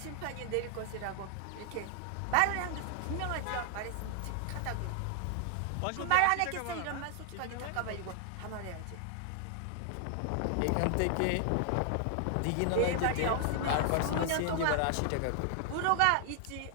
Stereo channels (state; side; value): different; both; correlation 0.00